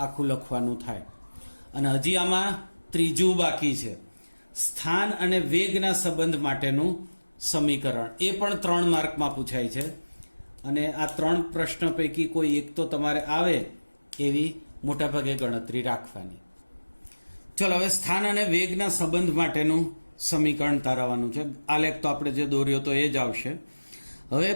આખું લખવાનું થાય. અને હજી આમાં ત્રીજું બાકી છે, સ્થાન અને વેગના સંબંધ માટેનું સમીકરણ. એ પણ 3 માર્કમાં પૂછાય છે, અને આ 3 પ્રશ્ન પૈકી કોઈ એક તો તમારે આવે એવી મોટાભાગે ગણતરી રાખવાની. ચલો હવે સ્થાન અને વેગના સંબંધ માટેનું સમીકરણ તારવવાનું છે. આલેખ તો આપણે જે દોર્યો તો એ જ આવશે. હવે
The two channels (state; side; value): inverted; both; correlation -1.00